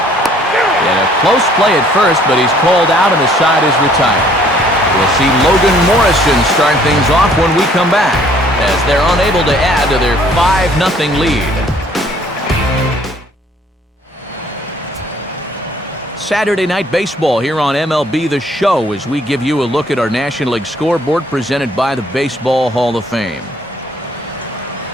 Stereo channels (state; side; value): normal; both; correlation 0.60